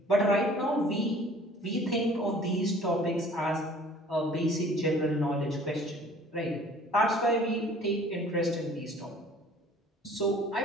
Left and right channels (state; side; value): normal; both; correlation 0.51